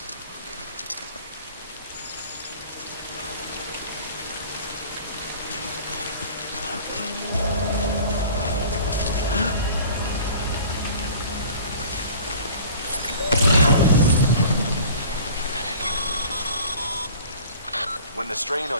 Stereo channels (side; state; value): both; inverted; correlation -0.45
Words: When the strain